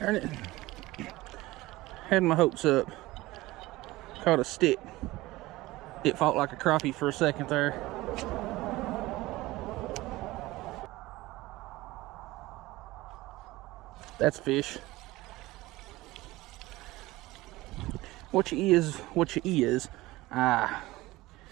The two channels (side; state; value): left; quieter; 18.9 dB